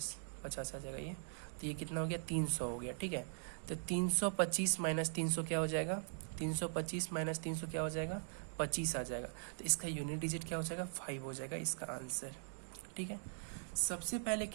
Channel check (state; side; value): silent; left; digital silence